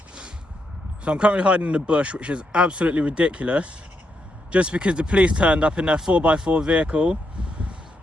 Which is absolutely ridiculous. Just because the police turned up in their 4x4 vehicle.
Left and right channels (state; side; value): normal; both; correlation 0.81